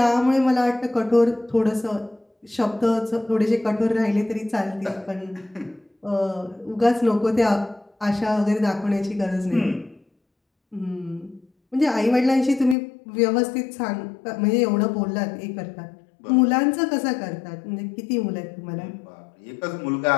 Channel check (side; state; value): right; drops out; at 12.8 s